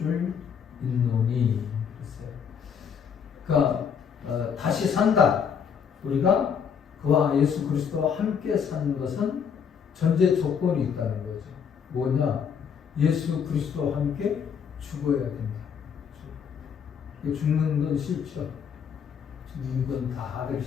믿노니 그러니까 다시 산다. 우리가 그와 예수 그리스도와 함께 사는 것은 전제 조건이 있다는 거죠. 뭐냐? 예수 그리스도와 함께 죽어야 된다. 죽는 건 싫죠. 죽는 건 다 하기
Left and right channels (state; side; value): quieter; right; 7.1 dB